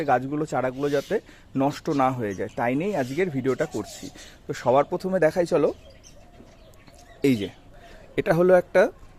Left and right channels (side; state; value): both; identical; correlation 1.00